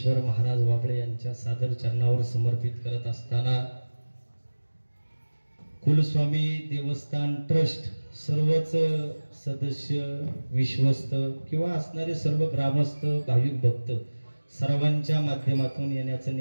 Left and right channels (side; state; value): both; inverted; correlation -1.00